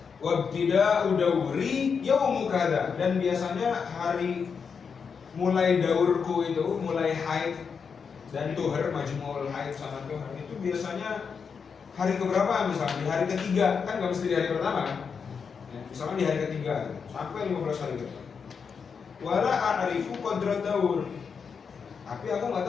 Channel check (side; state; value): right; quieter; 6.0 dB